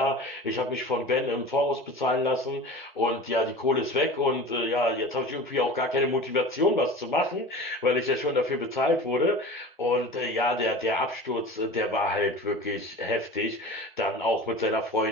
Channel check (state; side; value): normal; both; correlation 0.36